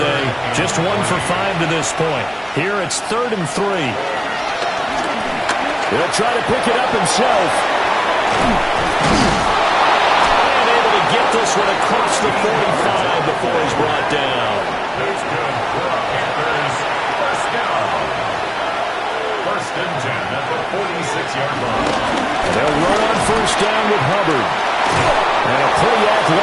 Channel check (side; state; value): both; identical; correlation 1.00